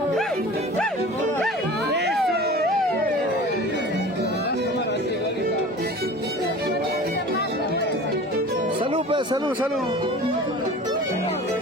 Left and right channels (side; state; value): both; normal; correlation 0.40